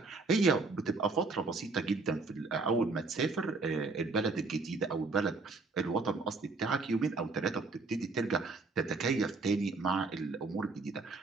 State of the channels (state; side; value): quieter; left; 3.8 dB